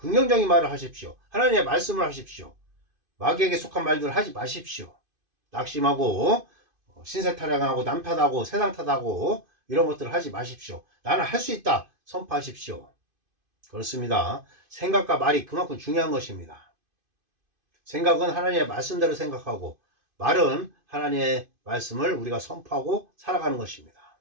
말을 하십시오. 하나님의 말씀을 하십시오. 마귀에게 속한 말들을 하지 마십시오. 낙심하고 신세타령하고 남탓하고 세상 탓하고 이런 것들을 하지 마십시오. 나는 할 수 있다 선포하십시오. 그렇습니다. 생각과 말이 그만큼 중요한 것입니다. 생각은 하나님의 말씀대로 생각하고 말은 하나님의 말씀을 우리가 선포하고 살아가는 것입니다.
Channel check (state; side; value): late; left; 2.5 ms